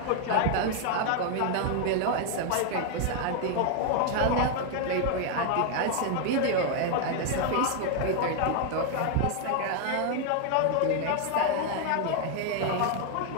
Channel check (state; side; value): different; both; correlation 0.00